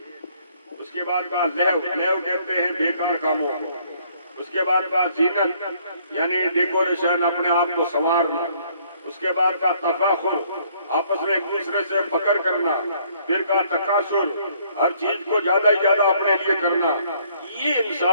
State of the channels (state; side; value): inverted; both; correlation -0.63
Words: اس کے بعد کہا لہو. لہو کہتے ہیں بیکار کاموں کو. اس کے بعد کہا زینت یعنی ڈیکوریشن، اپنے آپ کو سنوارنا. اس کے بعد کہا تفاخر، آپس میں ایک دوسرے سے فخر کرنا. پھر کہا تکاثر، ہر چیز کو زیادہ ہی زیادہ اپنے لیے کرنا. یہ